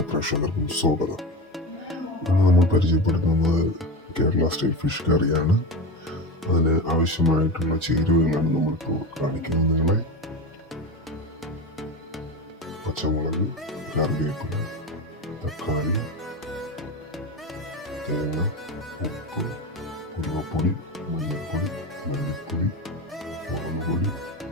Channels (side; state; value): both; normal; correlation 0.22